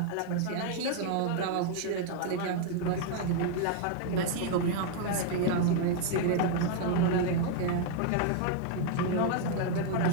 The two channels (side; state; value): both; different; correlation 0.00